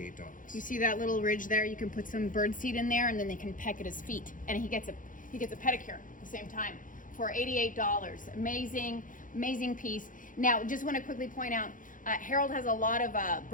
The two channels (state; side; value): late; right; 0.39 ms